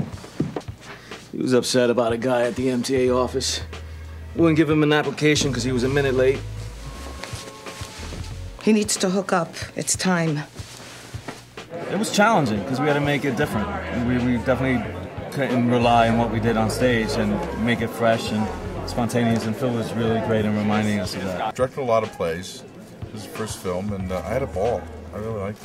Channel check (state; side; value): identical; both; correlation 1.00